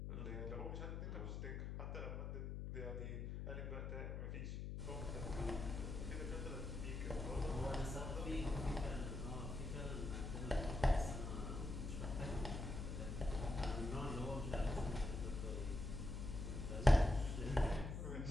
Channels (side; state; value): left; noise; hum, 4 dB below the sound